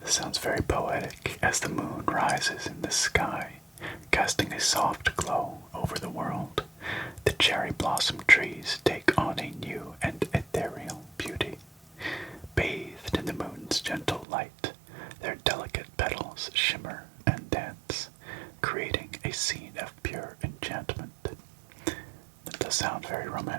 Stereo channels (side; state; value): left; drops out; at 14.2 s